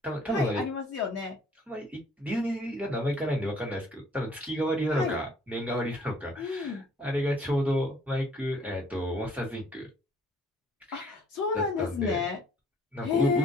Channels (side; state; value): both; normal; correlation 0.59